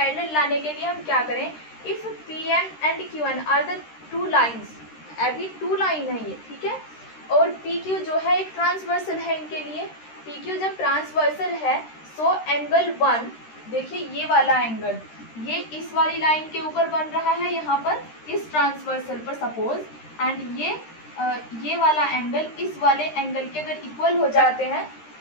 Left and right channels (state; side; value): late; right; 13 ms